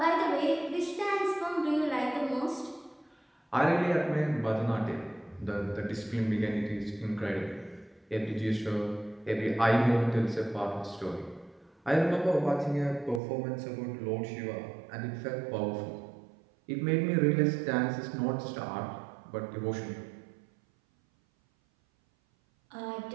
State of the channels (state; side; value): drops out; left; at 13.2 s